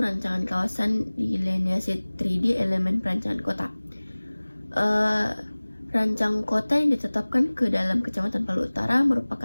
kawasan delineasi 3D elemen perencanaan kota. Rancang kota yang ditetapkan ke dalam Kecamatan Palu Utara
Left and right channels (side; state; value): both; inverted; correlation -1.00